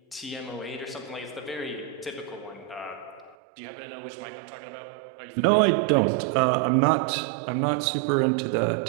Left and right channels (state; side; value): drops out; left; at 3.4 s